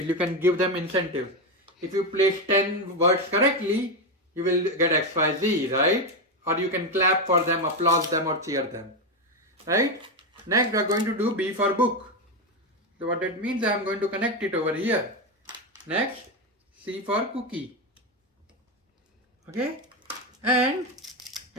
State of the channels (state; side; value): normal; both; correlation 0.10